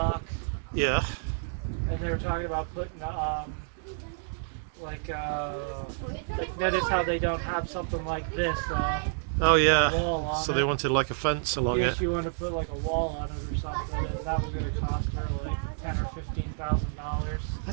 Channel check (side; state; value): left; silent; digital silence